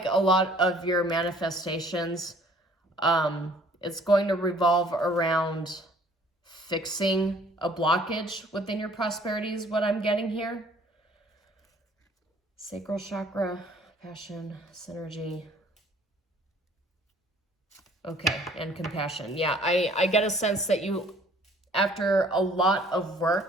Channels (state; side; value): normal; both; correlation 0.56